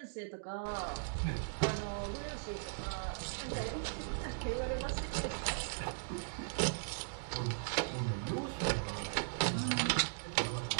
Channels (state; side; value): silent; left; digital silence